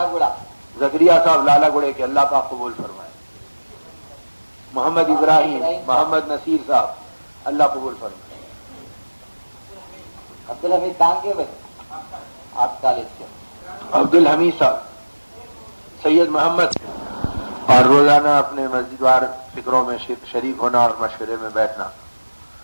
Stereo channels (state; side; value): inverted; both; correlation -1.00